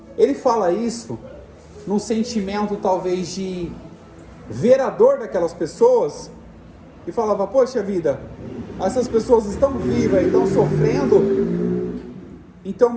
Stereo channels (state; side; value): identical; both; correlation 1.00